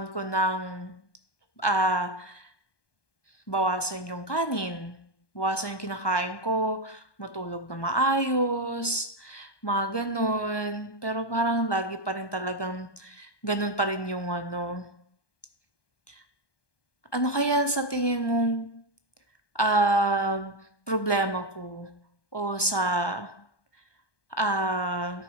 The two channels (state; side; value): late; right; 1.2 ms